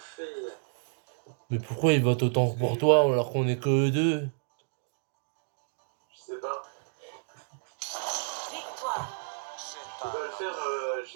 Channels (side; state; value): left; silent; digital silence